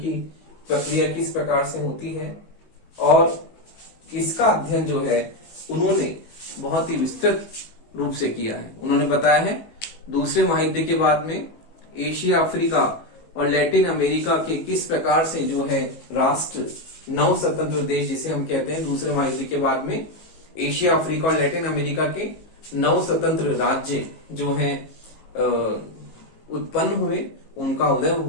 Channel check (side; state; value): right; late; 19 ms